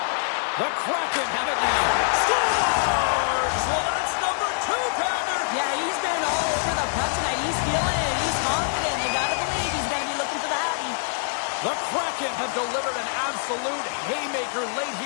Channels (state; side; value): silent; right; digital silence